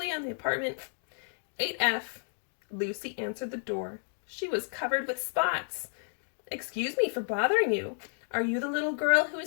on the apartment 8F. Lucy answered the door. She was covered with spots. Excuse me for bothering you. Are you the little girl who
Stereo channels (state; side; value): silent; right; digital silence